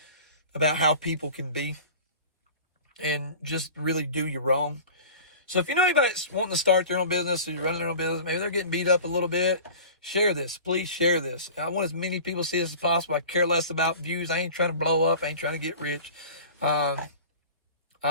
about how people can be and just really do you wrong. So if you know anybody that's wanting to start their own business or you're running their own business, maybe they're getting beat up a little bit, share this. Please share this. I want as many people to see this as possible. I care less about views. I ain't trying to blow up. I ain't trying to get rich. I'm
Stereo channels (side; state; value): both; inverted; correlation -0.39